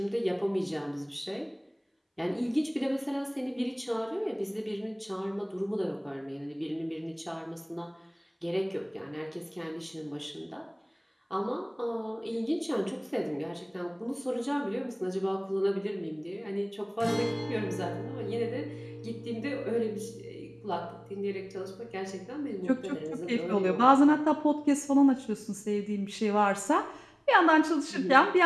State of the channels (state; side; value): identical; both; correlation 1.00